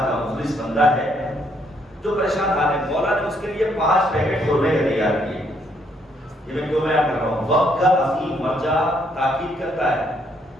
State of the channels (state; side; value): normal; both; correlation 0.71